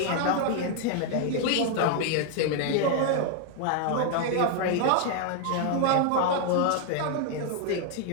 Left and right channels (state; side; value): different; both; correlation 0.00